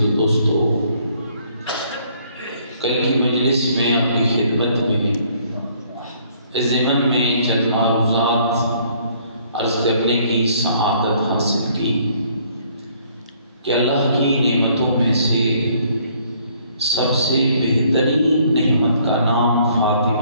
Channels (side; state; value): both; inverted; correlation -0.63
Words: و دوستوں، کل کی مجلس میں آپ کی خدمت میں اس ضمن میں چند معروضات عرض کرنے کی سعادت حاصل کی کہ اللہ کی نعمتوں میں سے سب سے بہترین نعمت کا نام